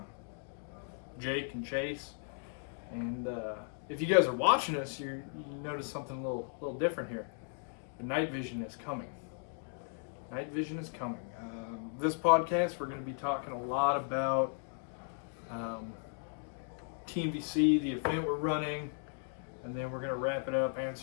Jake and Chase. And if you guys are watching us, you notice something a little different here. The night vision is coming. Night vision is coming. This podcast, we're going to be talking a lot about TNVC, the event we're running, and then we're going to wrap it up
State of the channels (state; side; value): silent; right; 54 dB below the other